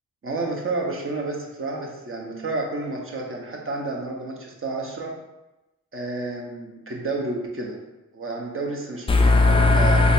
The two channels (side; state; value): both; normal; correlation 0.59